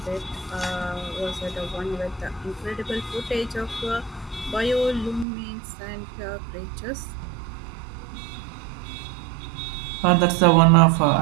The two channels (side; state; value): left; drops out; at 5.2 s